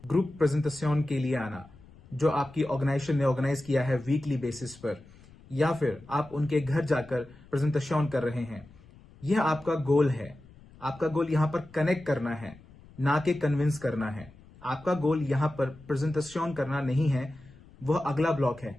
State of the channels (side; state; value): left; noise; rumble, 23 dB below the sound